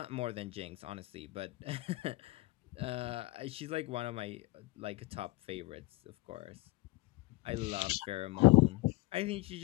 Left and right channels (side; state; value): right; quieter; 20.4 dB